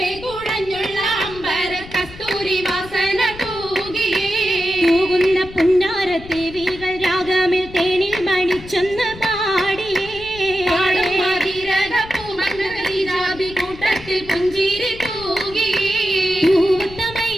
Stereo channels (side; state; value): left; noise; rumble, 16 dB below the sound